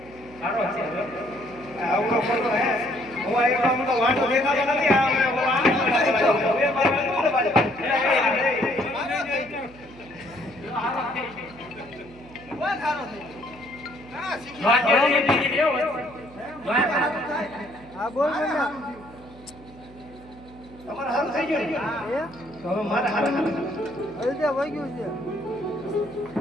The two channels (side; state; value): right; noise; hum, 21 dB below the sound